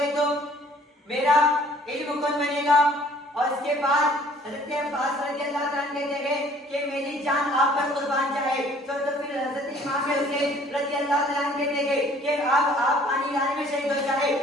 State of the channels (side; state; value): both; normal; correlation 0.56